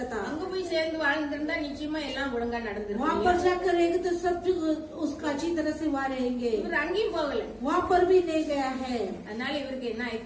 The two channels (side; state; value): both; identical; correlation 1.00